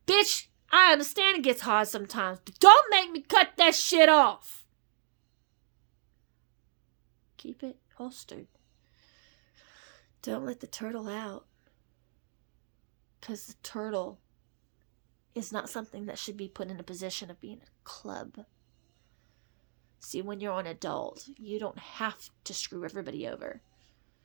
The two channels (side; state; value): left; silent; digital silence